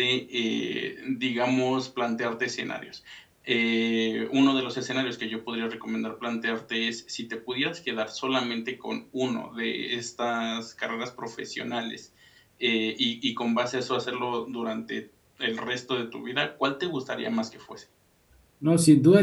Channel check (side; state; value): both; identical; correlation 1.00